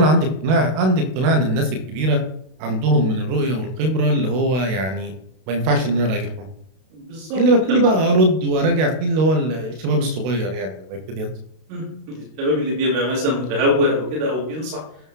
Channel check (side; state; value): left; late; 32 ms